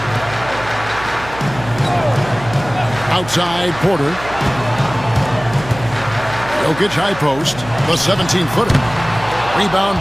Outside Porter. Jokic high post, the 17-footer.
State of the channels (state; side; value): noise; right; hum, 15 dB below the sound